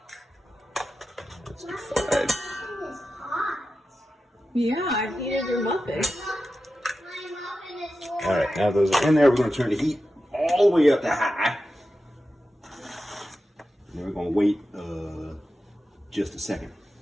Yeah, I've heated your muffin. All right, now those are in there. We're going to turn the heat all the way up to high. And then we're going to wait just a second.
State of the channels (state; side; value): normal; both; correlation 0.91